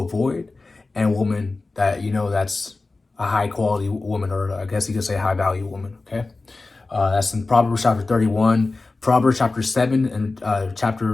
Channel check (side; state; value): right; quieter; 3.5 dB